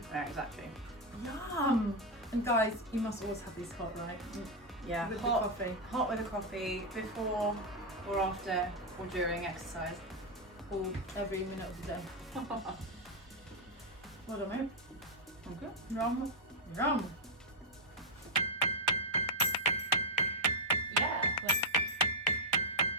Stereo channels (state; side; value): normal; both; correlation 0.02